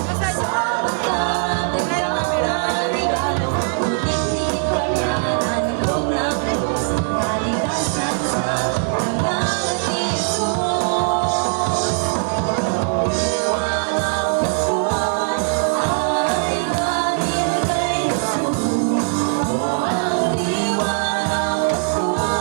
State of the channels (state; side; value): silent; left; 56 dB below the other